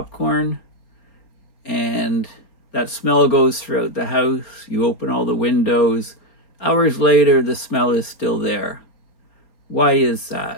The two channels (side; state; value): right; late; 4.3 ms